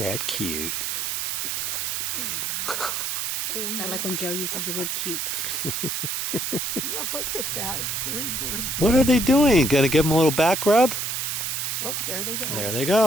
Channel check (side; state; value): right; noise; hiss, 1 dB below the sound